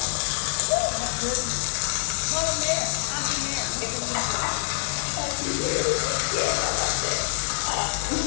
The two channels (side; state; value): right; silent; digital silence